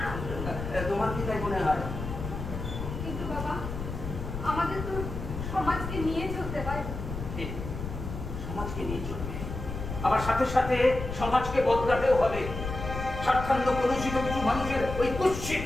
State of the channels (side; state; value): left; noise; rumble, 7 dB below the sound